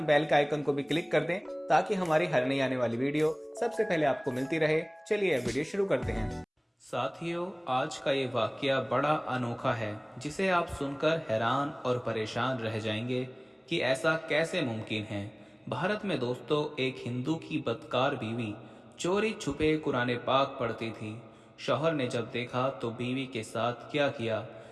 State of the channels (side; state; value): both; identical; correlation 1.00